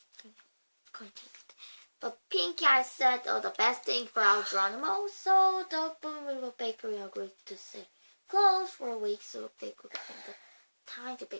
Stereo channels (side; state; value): both; inverted; correlation -1.00